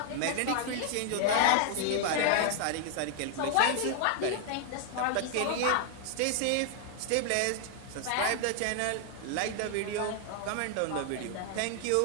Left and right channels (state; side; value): different; both; correlation 0.00